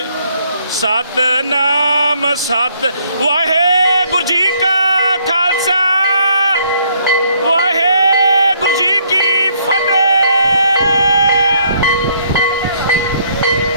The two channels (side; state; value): both; inverted; correlation -0.67